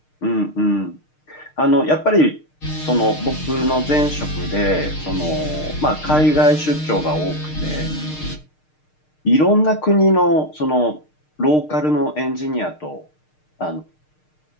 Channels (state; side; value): late; right; 6.5 ms